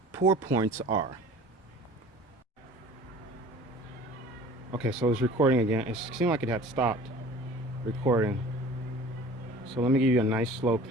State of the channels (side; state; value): both; normal; correlation 0.44